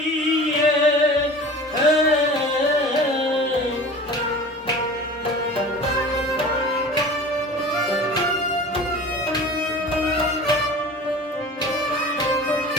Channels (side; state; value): both; normal; correlation 0.39